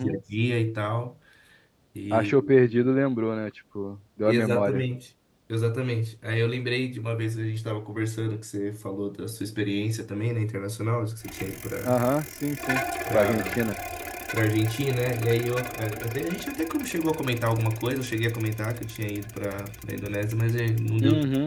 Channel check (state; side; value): identical; both; correlation 1.00